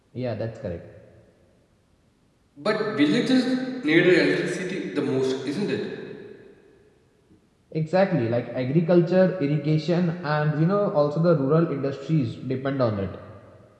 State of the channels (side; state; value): both; identical; correlation 1.00